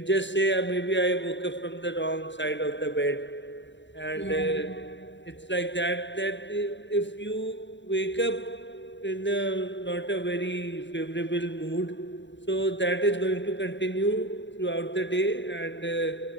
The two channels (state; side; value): late; right; 0.53 ms